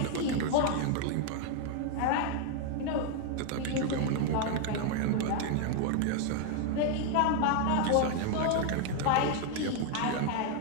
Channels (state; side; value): different; both; correlation 0.00